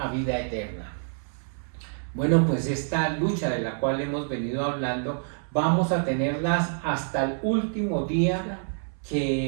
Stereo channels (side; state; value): left; silent; 60 dB below the other